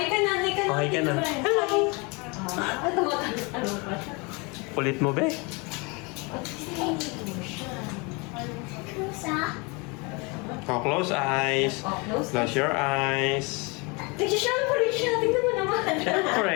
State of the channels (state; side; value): quieter; right; 29.1 dB